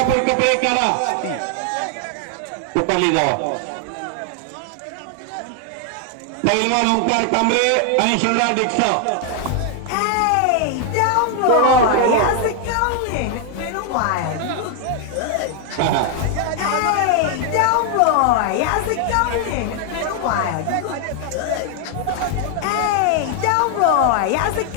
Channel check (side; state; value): both; different; correlation 0.00